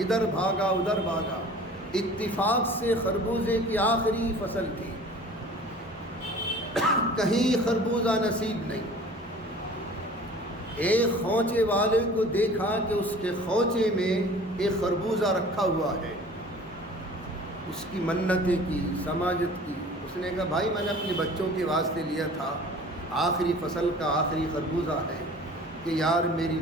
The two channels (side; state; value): both; normal; correlation 0.45